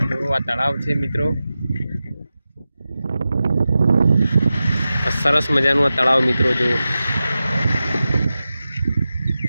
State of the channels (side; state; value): both; inverted; correlation -0.93